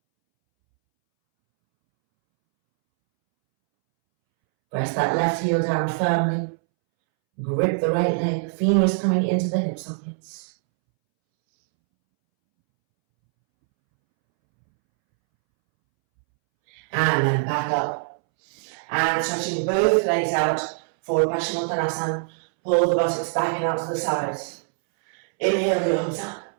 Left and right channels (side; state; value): left; silent; 63 dB below the other